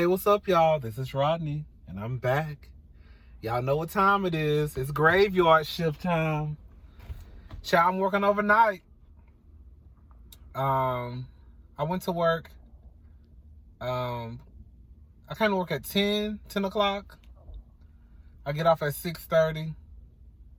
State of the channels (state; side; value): identical; both; correlation 1.00